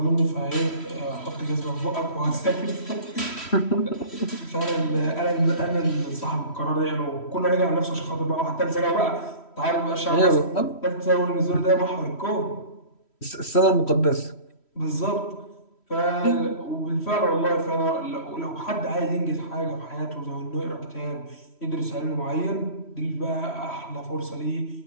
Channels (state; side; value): late; right; 3.1 ms